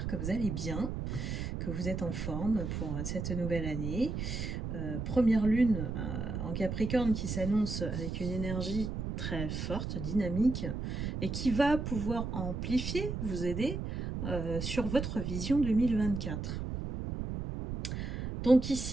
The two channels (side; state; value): right; noise; rumble, 4 dB below the sound